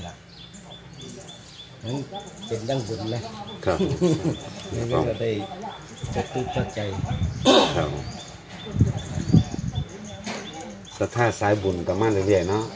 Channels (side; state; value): both; identical; correlation 1.00